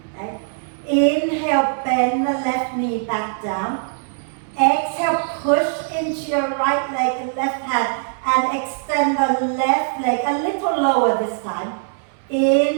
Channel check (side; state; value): left; silent; 65 dB below the other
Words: Okay? Inhale, bend the left knee back down. Exhale, push into your right leg and left hand and extend the left leg a little lower this time.